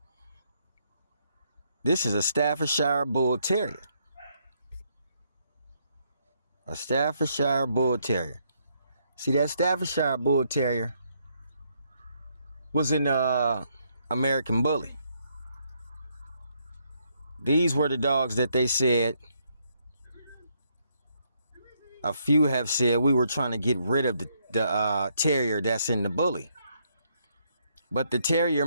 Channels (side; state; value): both; inverted; correlation -0.73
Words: this is a Staffordshire Bull Terrier. A Staffordshire Bull Terrier. See, that Staffordshire Bull Terrier was in American Bully. These were the dogs that they said, a few have said, we were trying to get rid of the terrier that's in the bully. But the terrier